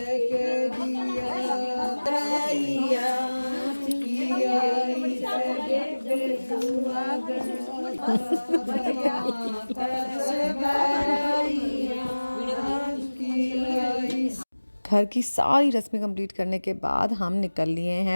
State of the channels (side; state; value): both; inverted; correlation -1.00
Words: दिया भराइया घर की सारी रस्में कंप्लीट करने के बाद हम निकल लिए